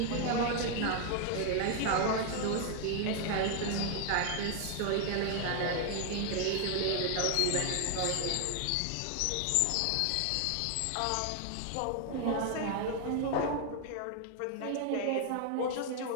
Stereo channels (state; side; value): different; both; correlation 0.00